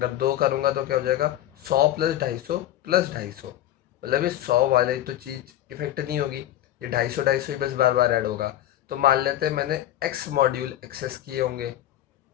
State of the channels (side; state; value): right; quieter; 12.9 dB